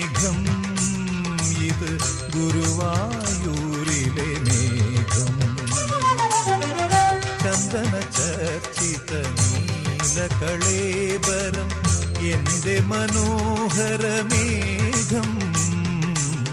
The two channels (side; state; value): both; identical; correlation 1.00